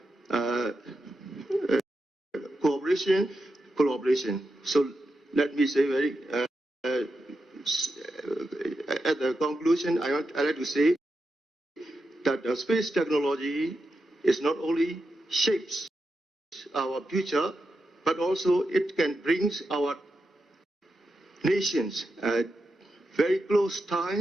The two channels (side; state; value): both; normal; correlation 0.87